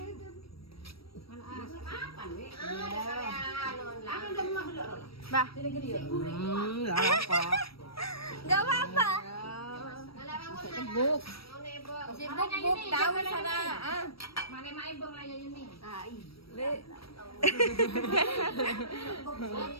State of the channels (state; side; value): late; right; 0.75 ms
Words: Bah. Apa? Enggak apa-apa. Buk. Buk tahu sana. Mana mai bang aja ini.